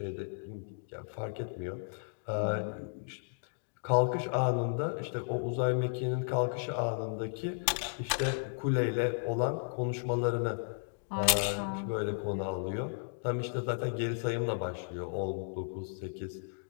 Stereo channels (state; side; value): silent; right; digital silence